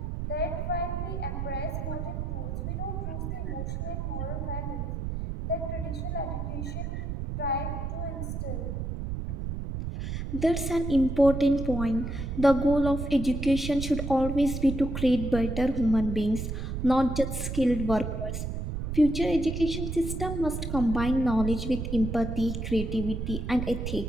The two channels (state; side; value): noise; right; rumble, 4 dB below the sound